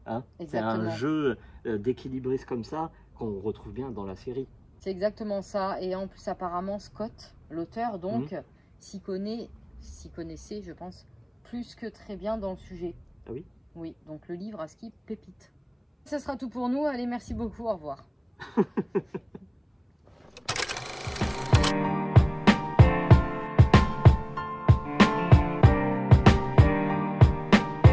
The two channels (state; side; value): identical; both; correlation 1.00